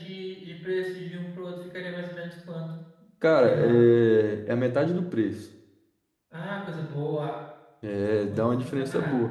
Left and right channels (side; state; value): both; identical; correlation 1.00